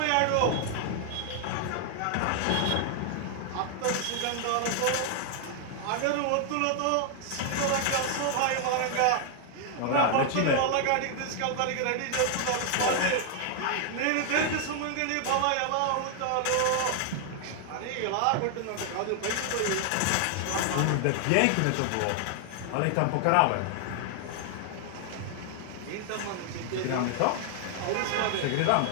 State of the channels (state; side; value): different; both; correlation 0.00